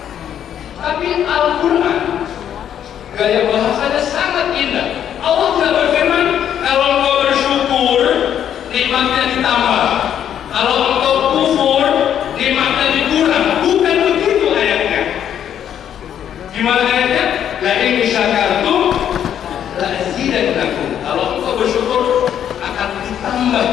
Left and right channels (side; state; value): right; quieter; 9.7 dB